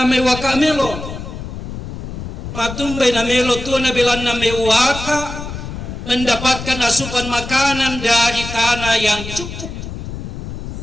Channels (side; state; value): left; noise; rumble, 8 dB below the sound